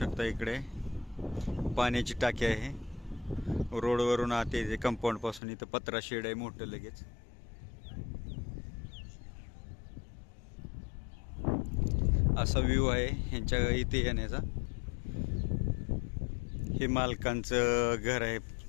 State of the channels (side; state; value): right; drops out; at 5.4 s